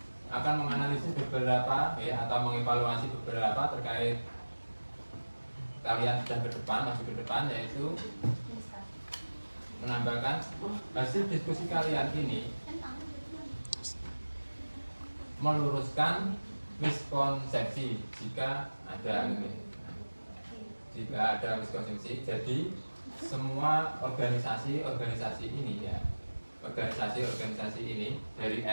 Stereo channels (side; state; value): both; inverted; correlation -1.00